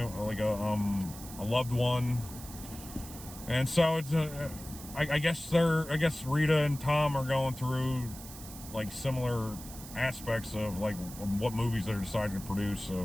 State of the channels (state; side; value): noise; right; hiss, 14 dB below the sound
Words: like a loved one, and so it's I guess Rita and Tom are going through like similar aspects of like what movies they're deciding to produce